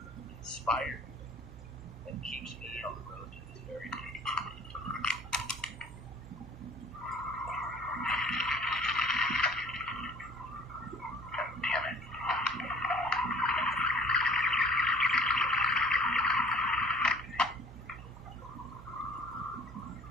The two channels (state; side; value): normal; both; correlation 0.52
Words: inspired me and keeps me on the road to this very day. God damn it.